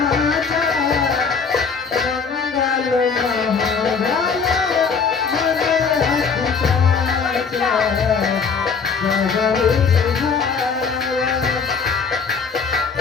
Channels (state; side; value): quieter; right; 5.5 dB